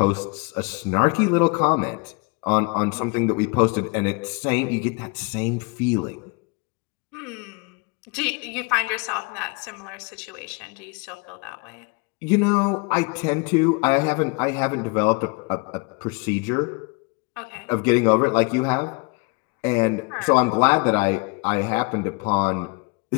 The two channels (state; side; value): quieter; right; 31.1 dB